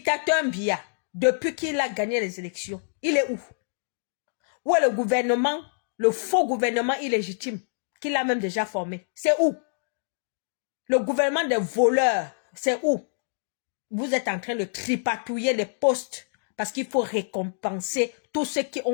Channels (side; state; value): right; silent; digital silence